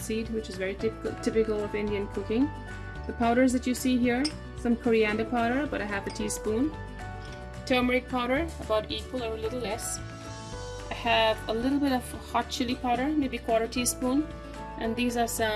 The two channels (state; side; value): identical; both; correlation 1.00